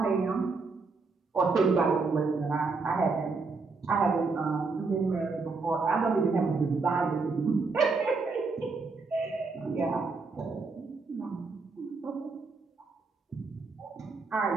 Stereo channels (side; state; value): left; quieter; 4.2 dB